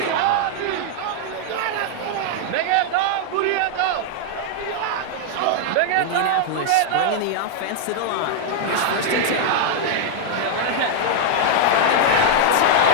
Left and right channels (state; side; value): different; both; correlation -0.01